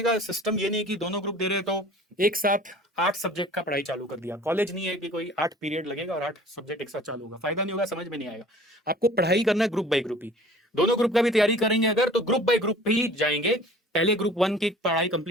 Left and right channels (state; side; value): normal; both; correlation 0.47